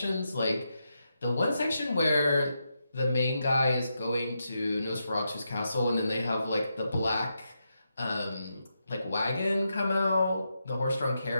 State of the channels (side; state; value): both; inverted; correlation -0.85